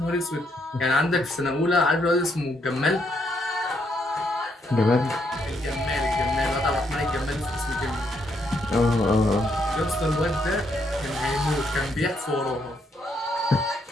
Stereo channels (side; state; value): both; normal; correlation 0.75